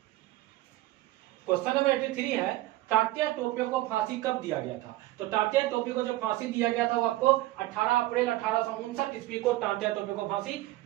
क्वेश्चन नंबर 83 है, तात्या टोपे को फांसी कब दिया गया था? तो तात्या टोपे को जो फांसी दिया गया था वो आपको 18 अप्रैल 1859 ईस्वी को तात्या टोपे को फांसी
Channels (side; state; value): left; quieter; 17.2 dB